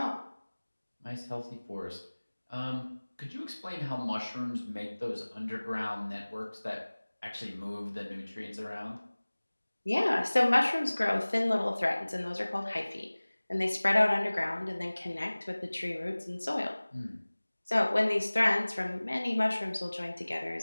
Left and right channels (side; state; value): both; inverted; correlation -1.00